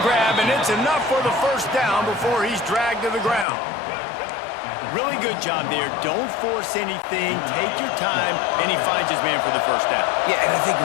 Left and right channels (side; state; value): right; drops out; at 3.5 s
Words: grab, and it's enough for the first down before he's dragged to the ground. Really good job there. Don't force anything. Take your time, and he finds his man for the first down. Yeah, and I think